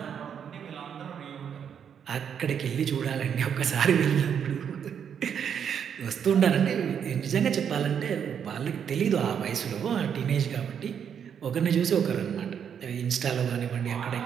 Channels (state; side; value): quieter; left; 8.0 dB